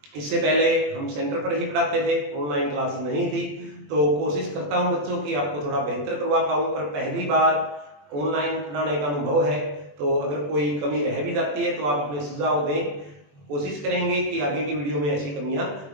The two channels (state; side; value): late; left; 21 ms